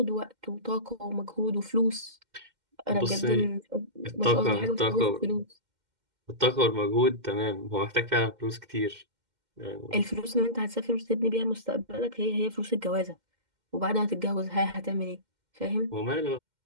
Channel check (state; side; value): late; left; 2.1 ms